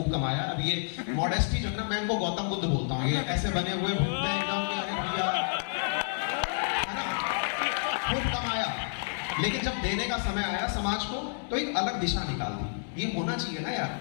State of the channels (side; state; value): right; silent; 58 dB below the other